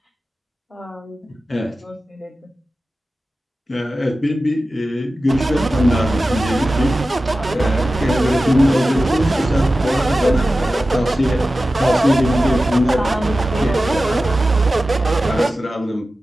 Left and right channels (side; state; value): both; normal; correlation 0.94